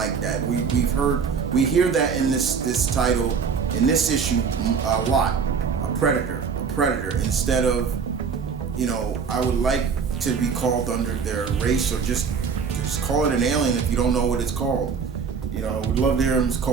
that. We hear that in this title, in this issue a lot. A predator instead of, I would like to be called under their race, or just call it an alien if you don't know what it's called. I would love to hear them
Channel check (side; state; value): left; quieter; 6.0 dB